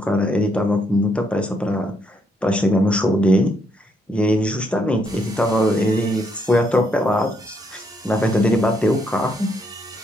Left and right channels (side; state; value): both; normal; correlation 0.74